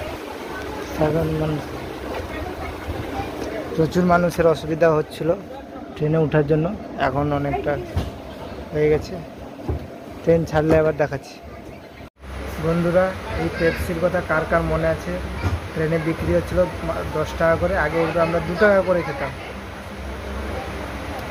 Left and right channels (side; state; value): both; identical; correlation 1.00